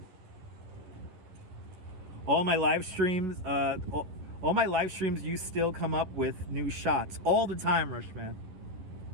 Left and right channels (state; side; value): late; left; 11 ms